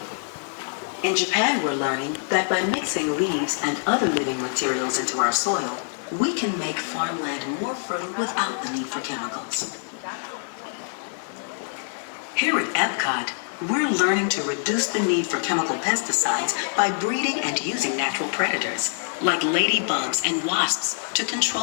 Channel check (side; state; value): right; silent; 61 dB below the other